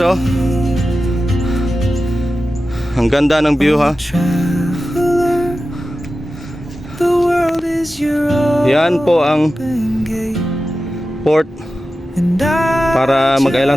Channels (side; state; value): both; normal; correlation 0.93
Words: oh. Ang ganda ng view ha. traveler? The world is your Yan po ang open gate, port and I para